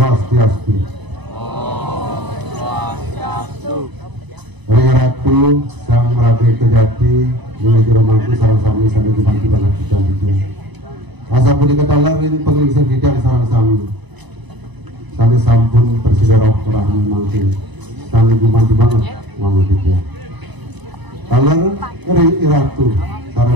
Om Swastiastu. Ratu Sang Rabe Kejati menuju romangku sarang sami sampai dibantu banget kita itu. Asa pun diketahuin pengelisir bidang sarang sami. Sami sampun Presiden Rahmi mangkin. Sami dibantu banget uang kita. Kaler Ratu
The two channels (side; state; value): left; late; 1.0 ms